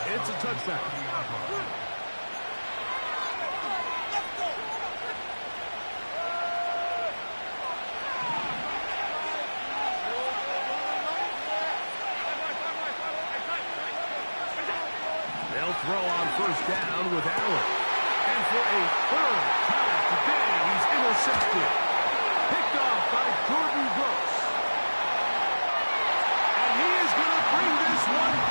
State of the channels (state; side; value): inverted; both; correlation -1.00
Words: It's a touchback. They'll throw on first down with Allen. And for a third time today, he's intercepted. Picked off by Gordon Brooks. And he is going to bring this one